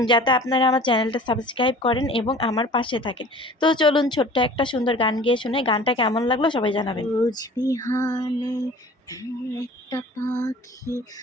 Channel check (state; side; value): normal; both; correlation 0.45